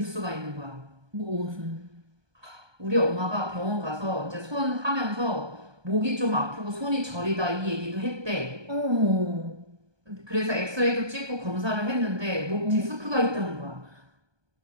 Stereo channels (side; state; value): left; late; 1.2 ms